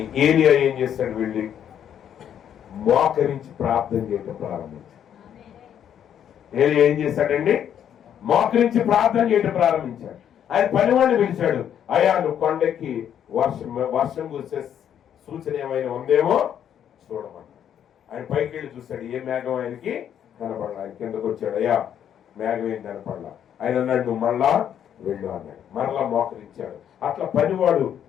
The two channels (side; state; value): right; quieter; 9.4 dB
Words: ఏలియా ఏం చేస్తాడు? వెళ్ళి మోకరించి ప్రార్థన చేయడం ప్రారంభించాడు. ఏలియా ఏం చేశాడండి? మోకరించి ప్రార్థన చేయడం ప్రారంభించాడు. ఆయన పనివాడిని పిలిచాడు, అయ్యా నువ్వు కొండకి వర్షం కురిసే సూచన ఏమైనా ఉందేమో చూడమన్నాడు. ఆయన పైకి వెళ్ళి చూశాడు, ఏ మేఘం ఆయనకి కనపడలా. ఆయన కిందకు వచ్చాడు, అయ్యా మేఘం ఏం కనపడలా. ఆయన అన్నాడు, నువ్వు మళ్ళా వెళ్ళు అన్నాడు. మరలా మోకరించాడు. అట్లా పనివాడు